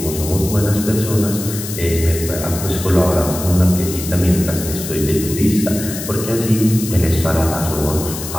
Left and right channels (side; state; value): left; noise; hiss, 8 dB below the sound